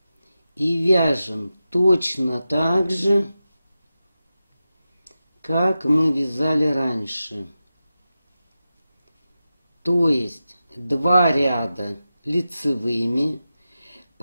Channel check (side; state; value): both; inverted; correlation -0.92